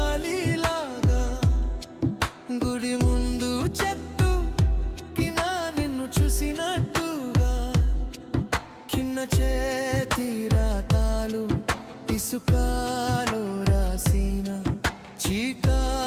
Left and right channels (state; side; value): identical; both; correlation 1.00